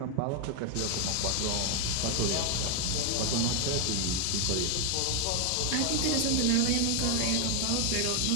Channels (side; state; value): both; different; correlation 0.01